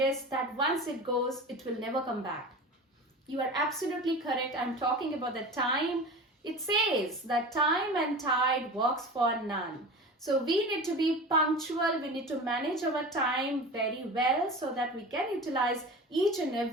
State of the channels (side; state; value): both; normal; correlation 0.33